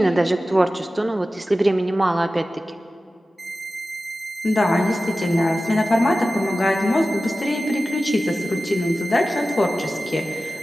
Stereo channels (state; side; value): normal; both; correlation 0.95